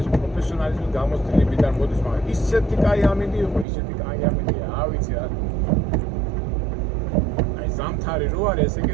პროფესიონალიზმი გამოსtildeებიდან მოდის, მაგრამ ისეთი კაი ამინდი იყო, ისეთი კაი ამინდია, არ ვიცი რა. აი ზამთარი რო არის, ესე იგი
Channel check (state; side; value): drops out; left; at 3.7 s